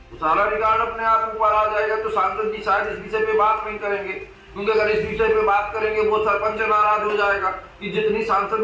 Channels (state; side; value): identical; both; correlation 1.00